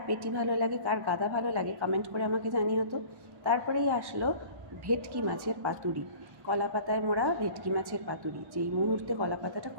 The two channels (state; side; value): late; left; 1.1 ms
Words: পেটি ভালো লাগে, কার গাদা ভালো লাগে, কমেন্ট করে আমাকে জানিও তো। তারপরেই আসলো ভেটকি মাছের পাতুরি, কলা পাতায় মোড়া ভেটকি মাছের পাতুরি। যেই মুহূর্তে কলা পাতাটা